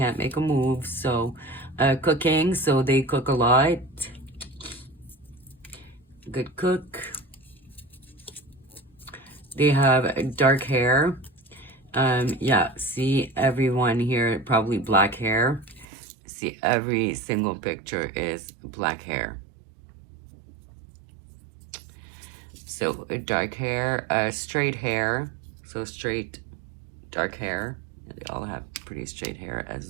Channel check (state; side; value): drops out; left; at 15.9 s